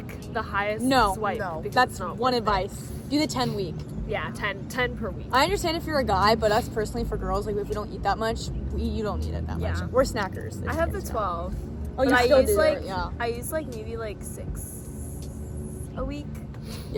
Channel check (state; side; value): identical; both; correlation 1.00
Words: the highest swipe. No, that's one advice. Do the 10 week. Yeah, 10 per week. I understand if you're a guy, but us personally for girls, like if we don't eat that much, you don't need it that much. We're snackers. I have the 12. Oh, you still do like, it, yeah. I use like maybe like 6 a week.